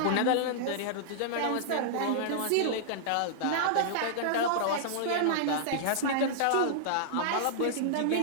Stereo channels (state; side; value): different; both; correlation -0.02